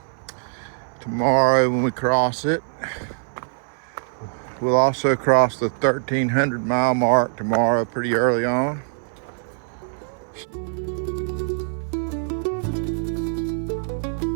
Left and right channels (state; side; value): silent; left; 59 dB below the other